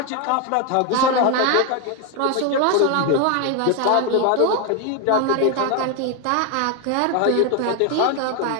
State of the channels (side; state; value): both; different; correlation 0.01